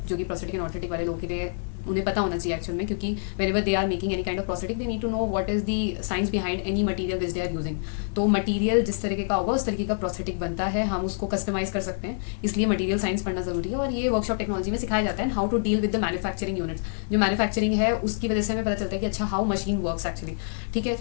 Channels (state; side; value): silent; right; digital silence